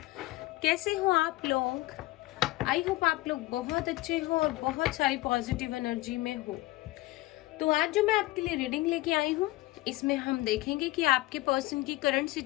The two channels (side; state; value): right; quieter; 19.0 dB